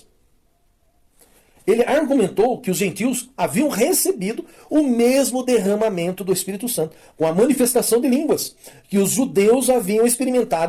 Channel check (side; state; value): both; identical; correlation 1.00